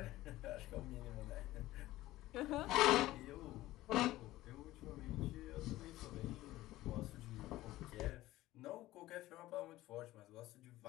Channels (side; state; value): right; quieter; 16.4 dB